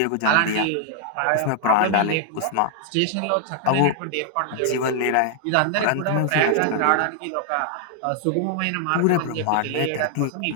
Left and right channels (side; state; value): both; different; correlation 0.00